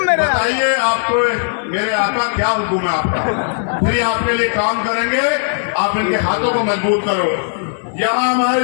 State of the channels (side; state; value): right; silent; 67 dB below the other